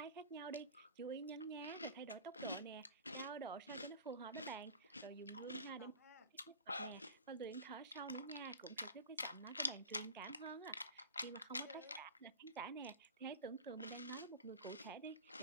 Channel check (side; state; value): both; inverted; correlation -0.36